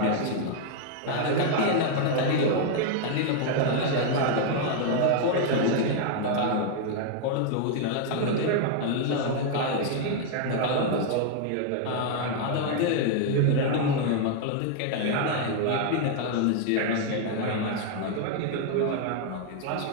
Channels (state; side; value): different; both; correlation 0.00